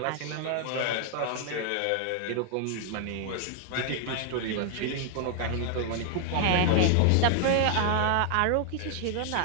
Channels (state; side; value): different; both; correlation 0.00